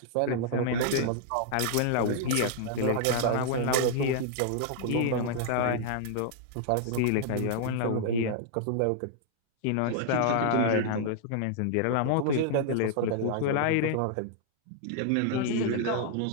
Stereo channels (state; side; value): different; both; correlation -0.01